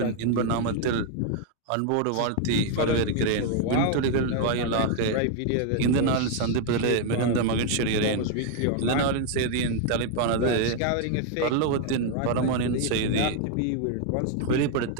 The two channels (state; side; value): different; both; correlation 0.00